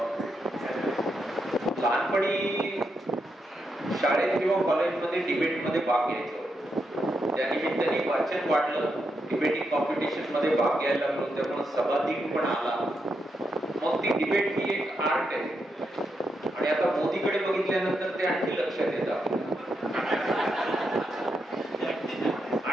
लहानपणी शाळेत किंवा कॉलेजमध्ये डिबेटमध्ये भाग घ्यायचो. त्या निमित्ताने वाचन वाढलं, डिबेटिंग कॉम्पिटिशन मध्ये भाग घ्यायला लागलो, त्यामुळे सभाधीक पण आला. मग ती डिबेट ही एक आर्ट आहे आणि आता मोदीकडे बघितल्यानंतर ते आणखी लक्षात येतं.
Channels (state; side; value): normal; both; correlation 0.83